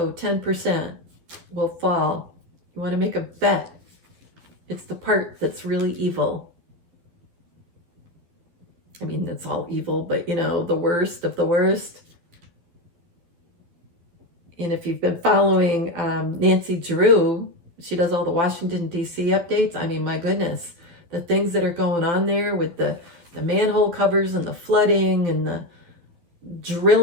10% will fall. You want to make a bet. It's the part that's really evil. I mean, it's all evil, but the worst of the worst. And if you've been following Nancy Drew, she does all the Washington, D.C. updates. I mean, my goodness, the things that are going on there with the manhole covers and the flooding and the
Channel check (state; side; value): late; left; 12 ms